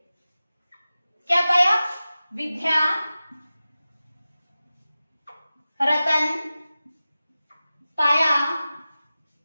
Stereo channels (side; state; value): both; inverted; correlation -0.95